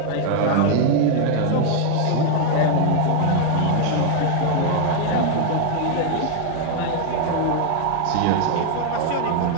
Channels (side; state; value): both; different; correlation 0.00